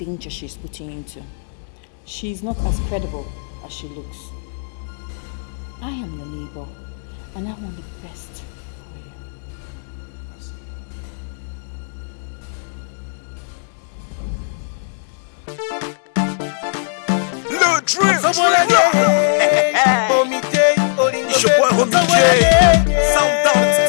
she's putting you into. She is not as credible as she looks. I am your neighbor, and I want the best for you. Le Dream! It's your boy Homie J. Sound Down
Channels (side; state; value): right; silent; digital silence